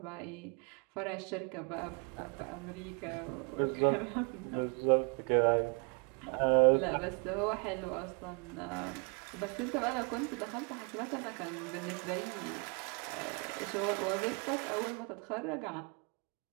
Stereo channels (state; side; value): quieter; left; 34.4 dB